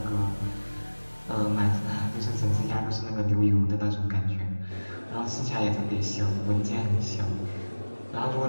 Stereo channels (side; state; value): both; inverted; correlation -1.00